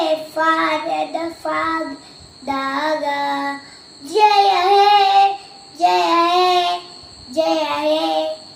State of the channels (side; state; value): both; identical; correlation 1.00